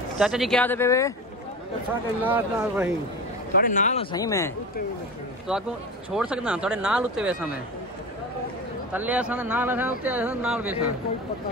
चाचा जी क्या दे थोड़े नाल सही मैं तो आपको छोड़ सकता थोड़े नाल उत्ते वैसा मैं तले नाल उत्ते नाल वैसा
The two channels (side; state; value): both; normal; correlation 0.28